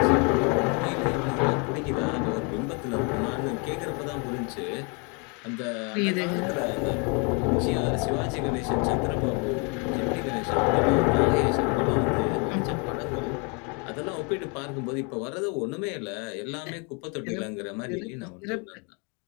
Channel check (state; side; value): quieter; right; 34.0 dB